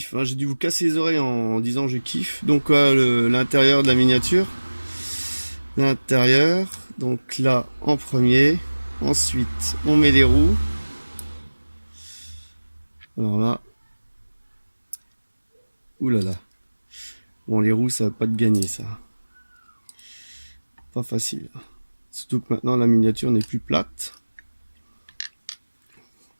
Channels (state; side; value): inverted; both; correlation -1.00